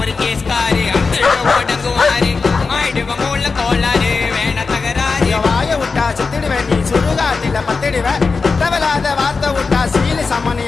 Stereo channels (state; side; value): quieter; right; 4.5 dB